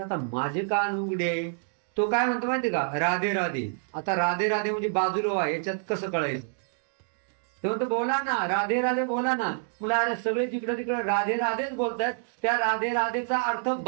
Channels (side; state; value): left; silent; digital silence